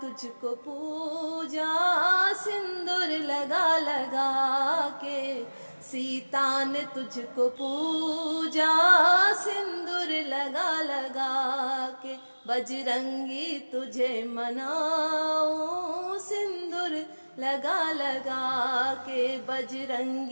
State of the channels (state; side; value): inverted; both; correlation -1.00